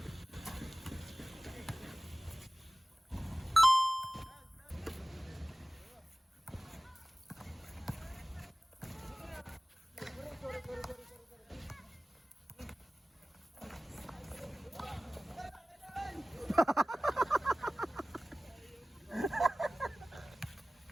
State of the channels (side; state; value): both; normal; correlation 0.97